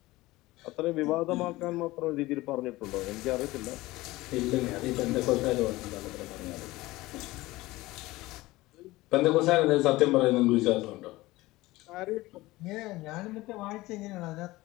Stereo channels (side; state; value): right; quieter; 19.2 dB